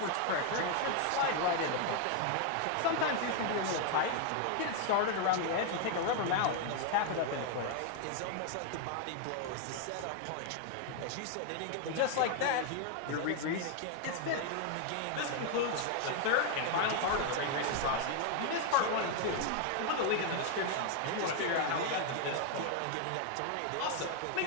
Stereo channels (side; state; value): both; different; correlation 0.00